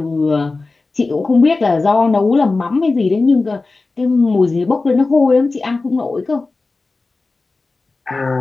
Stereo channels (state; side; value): quieter; right; 3.6 dB